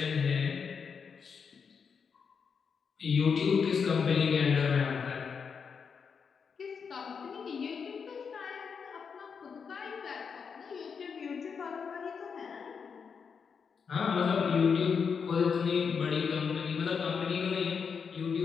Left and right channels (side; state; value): right; quieter; 6.1 dB